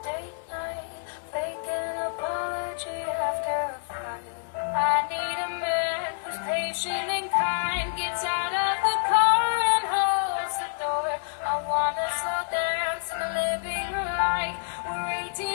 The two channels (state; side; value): silent; right; digital silence